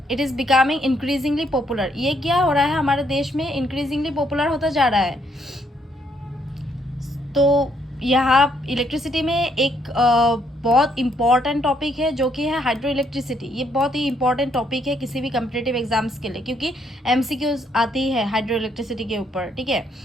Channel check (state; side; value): normal; both; correlation 0.71